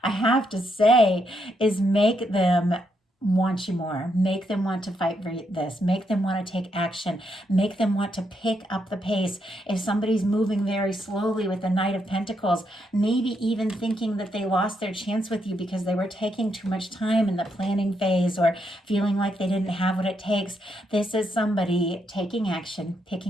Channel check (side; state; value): both; normal; correlation 0.78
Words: I have to say, is make them want you more, make them want to fight for this, make them want to take action, make them want to pick up the pace. If somebody's moving very slowly with the Knight of Pentacles, maybe even thinking that they lost their chance with you because they were taking too much time in the planning phase, or feeling like they didn't have what it takes, this is somebody taking action,